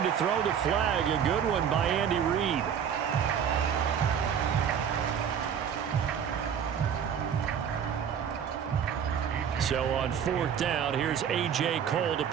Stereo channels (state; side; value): quieter; left; 8.1 dB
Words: to throw the flag, a good one by Andy Reid. So on 4th down, here's A.J. Cole to